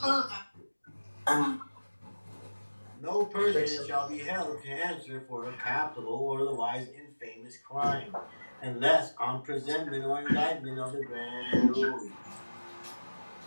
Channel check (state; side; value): inverted; both; correlation -1.00